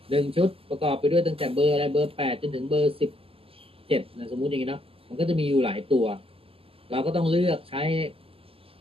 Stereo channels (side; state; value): left; late; 0.27 ms